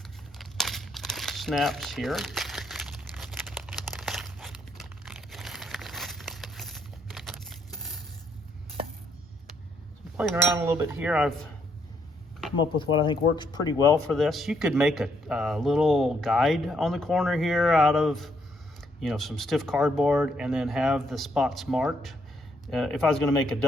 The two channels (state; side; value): normal; both; correlation 0.73